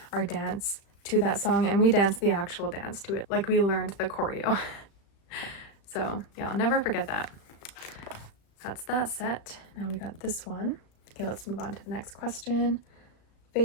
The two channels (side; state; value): right; late; 36 ms